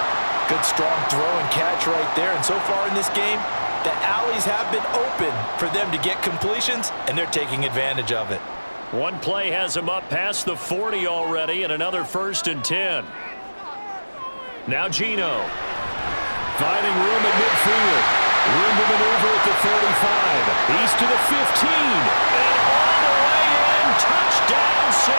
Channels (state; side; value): inverted; both; correlation -1.00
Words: Good strong throw and catch right there, and so far in this game, the alleys have been open for them to get completions, and they're taking advantage of it. One play has him up past the 40 already, and another 1st and 10. Now Geno. Finding room at midfield. Room to maneuver at the 35. He's to the 15. And all the way in. Touchdown,